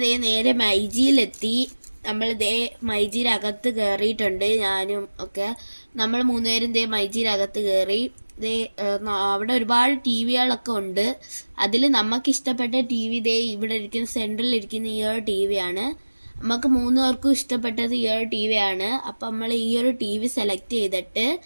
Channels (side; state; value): both; inverted; correlation -1.00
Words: നേരെ മൈജിയിലെത്തി. നമ്മൾ മൈജിയിലകത്ത് കയറിയിട്ടുണ്ട്. ഞാനും ഒക്കെ നമ്മൾ മൂന്നുപേരും മൈജിയിലകത്ത് കയറി. അവിടെ ഒരുപാട് TVകളൊക്കെ ഉണ്ട്. അതിൽ നമുക്കിഷ്ടപ്പെട്ട TV ഇവിടെ ഇരിക്കുന്ന സെൻട്രലിരിക്കുന്ന ഈ ഒരു TV ആണ്. നമുക്ക് മൂന്നുപേർക്കും ഇഷ്ടപ്പെട്ടത് ഈ ഒരു TV ആണ്. അപ്പം നമ്മൾ ഈ ഒരു TV സെലക്ട് ചെയ്തിട്ട്